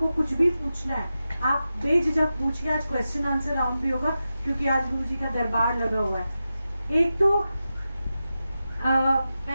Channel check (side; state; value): both; inverted; correlation -0.92